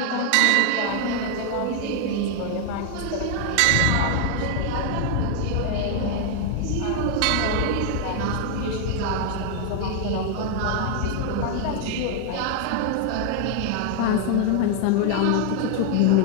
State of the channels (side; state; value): both; different; correlation 0.00